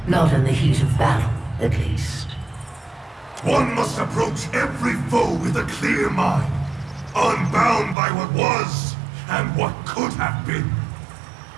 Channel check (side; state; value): left; drops out; at 8.0 s